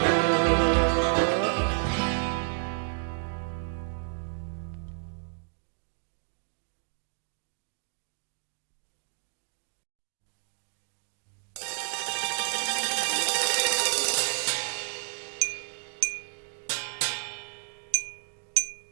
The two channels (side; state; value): left; silent; digital silence